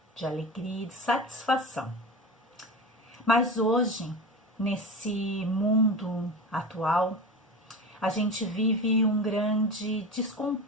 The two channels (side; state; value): both; normal; correlation 0.28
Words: de alegria e de satisfação. Mas hoje, nesse mundo atual, a gente vive um grande